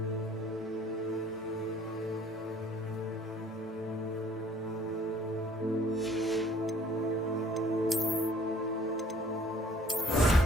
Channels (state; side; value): normal; both; correlation 0.56